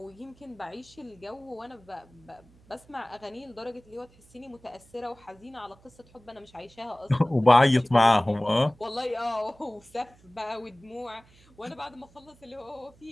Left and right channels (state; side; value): noise; right; hum, 28 dB below the sound